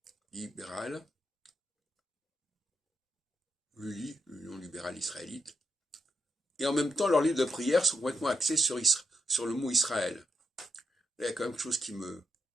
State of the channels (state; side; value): normal; both; correlation 0.83